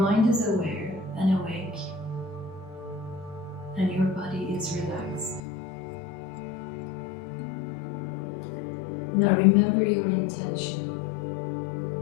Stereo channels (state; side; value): drops out; right; at 5.4 s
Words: is aware and awake, and your body is relaxed. Now remember your intention.